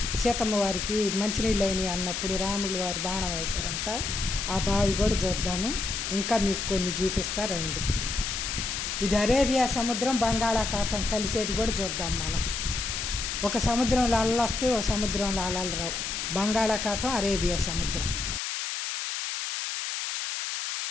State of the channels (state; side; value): noise; left; hiss, 3 dB below the sound